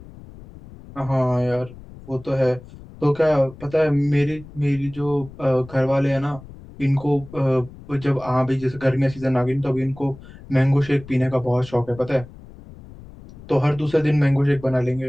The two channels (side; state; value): left; noise; rumble, 18 dB below the sound